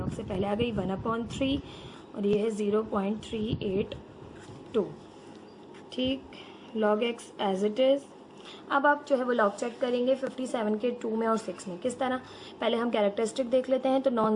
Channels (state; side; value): identical; both; correlation 1.00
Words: से पहले आ गई 1/3 और ये है 0.382, ठीक। log x as it is. अब आप जो है वो लॉग चेक करेंगे 57 के 2 में और 6 में। किस तरह, पहले हम कैरेक्टरिस्टिक देख लेते हैं। तो